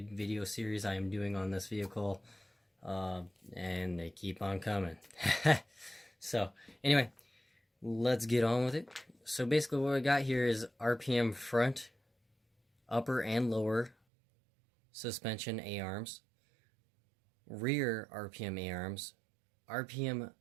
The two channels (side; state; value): left; drops out; at 14.0 s